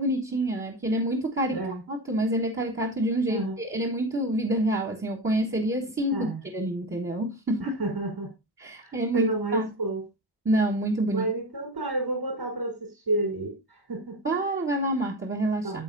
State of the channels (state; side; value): normal; both; correlation 0.24